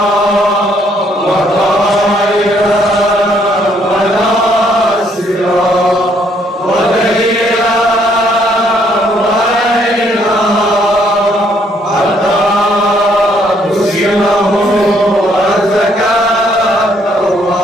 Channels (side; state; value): both; normal; correlation 0.68